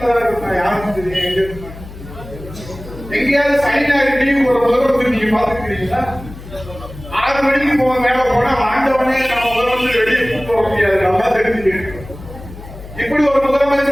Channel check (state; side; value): noise; left; hum, 15 dB below the sound